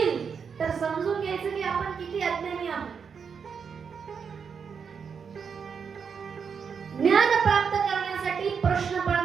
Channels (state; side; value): quieter; left; 6.4 dB